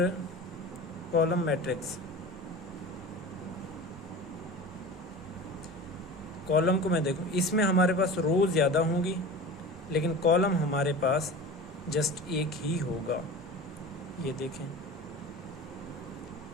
कॉलम मैट्रिक्स, कॉलम को मैं देखूं, इसमें हमारे पास रो ज़्यादा होंगी लेकिन कॉलम हमारे पास जस्ट एक ही होगा। ये देखें,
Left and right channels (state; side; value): normal; both; correlation 0.34